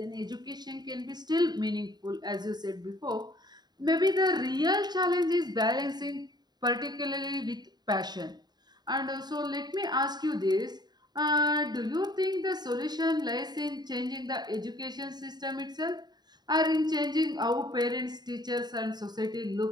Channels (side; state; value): left; late; 0.20 ms